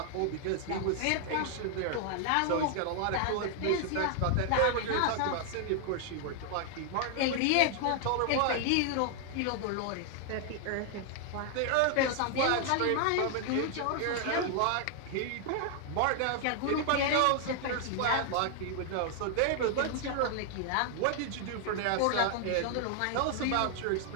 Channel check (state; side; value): different; both; correlation 0.00